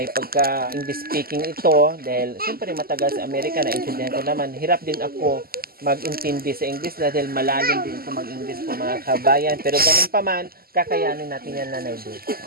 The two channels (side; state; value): left; late; 0.43 ms